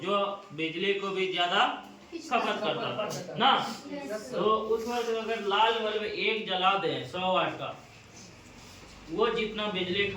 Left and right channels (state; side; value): identical; both; correlation 1.00